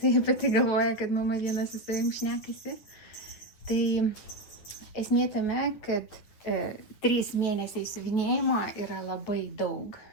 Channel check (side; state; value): right; late; 9.8 ms